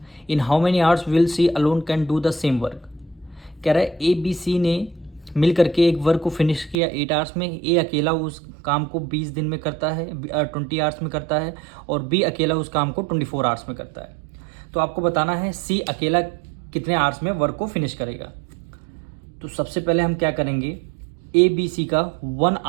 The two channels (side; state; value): left; drops out; at 6.8 s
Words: In how many hours will C alone can do the same work. कह रहा है A B C ने मिल करके एक work को finish किया 8 hours में। ए अकेला उस काम को 20 दिन में करता है, 20 आवर्स में करता है, और बी अकेला उस काम को 24 आवर्स में करता है। तो आपको बताना है सी अकेला कितने आवर्स में वर्क को फिनिश करेगा। तो सबसे पहले हम क्या करेंगे, ए बी सी का 1